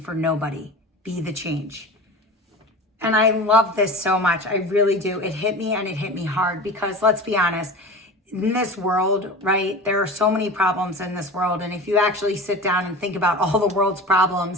nobody. Be the change. And I love this so much. I really do. It hit me, and it hit me hard, because let's be honest, in this world, right, there are so many problems in this world. And if you actually sit down and think about all the world's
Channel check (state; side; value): normal; both; correlation 0.33